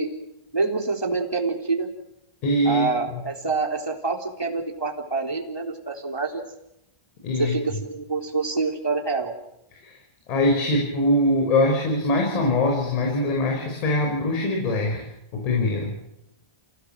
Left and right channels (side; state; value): right; late; 1.2 ms